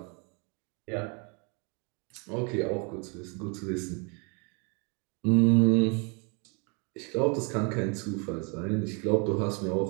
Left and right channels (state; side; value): quieter; left; 34.3 dB